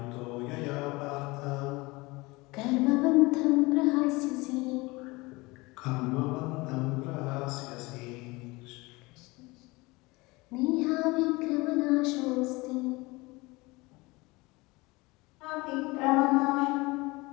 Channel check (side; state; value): right; quieter; 23.2 dB